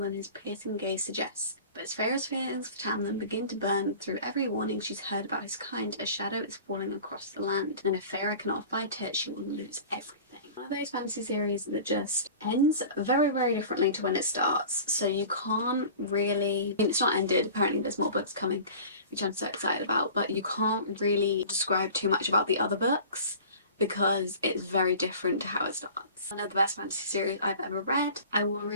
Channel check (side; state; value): both; inverted; correlation -0.41